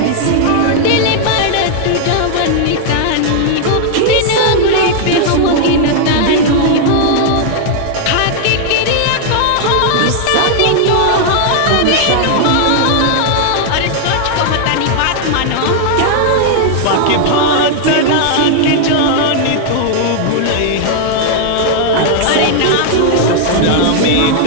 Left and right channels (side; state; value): both; different; correlation 0.00